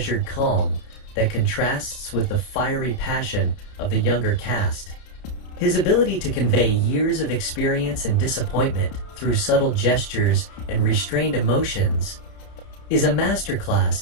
calm that contrasts with the fiery passion of the younger cast. His ability to convey years of experience and disappointment through subtle gestures and restrained emotions is a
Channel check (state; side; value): late; right; 31 ms